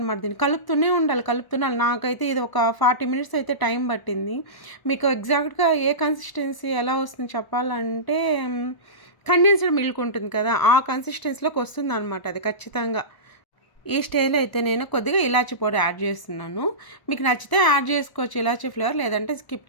దీన్ని కలుపుతూనే ఉండాలి. నాకైతే ఇది ఒక 40 మినిట్స్ అయితే టైం పట్టింది. మీకు ఎగ్జాక్ట్గా ఏ కన్సిస్టెన్సీ ఎలా వస్తుంది చెప్పాలంటే కండెన్స్డ్ మిల్క్ ఉంటుంది కదా, ఆ కన్సిస్టెన్సీలోకి వస్తుంది అనమాట అది ఖచ్చితంగా. ఈ స్టేజ్లో అయితే నేను కొద్దిగా ఇలాచీ పౌడర్ యాడ్ చేస్తున్నాను. మీకు నచ్చితే యాడ్ చేసుకోవచ్చు ఇలాచీ ఫ్లేవర్, లేదంటే స్కిప్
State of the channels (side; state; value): right; late; 1.0 ms